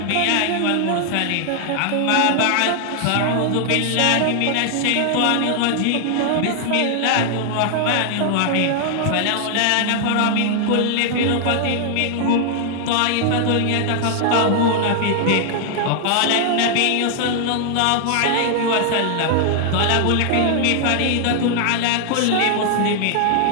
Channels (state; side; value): different; both; correlation 0.00